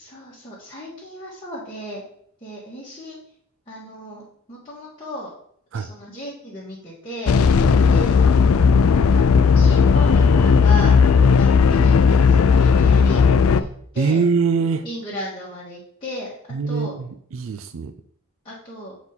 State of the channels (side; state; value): right; quieter; 4.5 dB